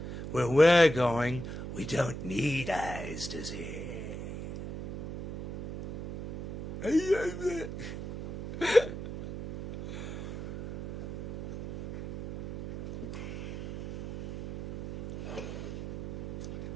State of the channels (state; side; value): noise; right; hum, 8 dB below the sound